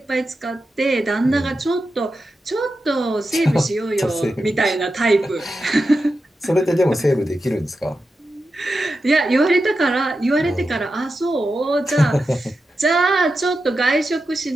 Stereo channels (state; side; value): normal; both; correlation 0.90